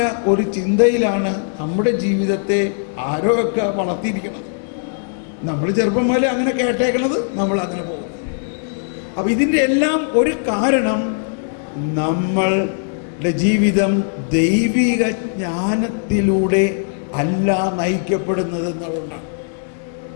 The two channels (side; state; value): right; silent; digital silence